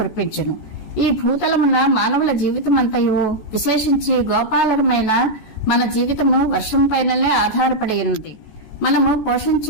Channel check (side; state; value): right; late; 14 ms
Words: ఈ భూతలమున మానవుల జీవితమంతయు, విశేషించి గోపాలరమైన మన జీవితము వర్షం పైననే ఆధారపడి ఉన్నది. మనము